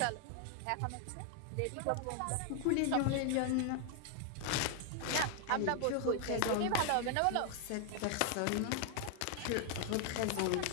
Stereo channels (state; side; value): different; both; correlation 0.00